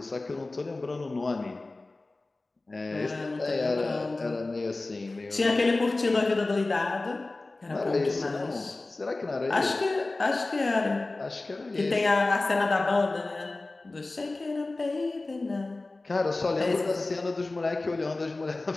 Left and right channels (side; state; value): right; quieter; 3.2 dB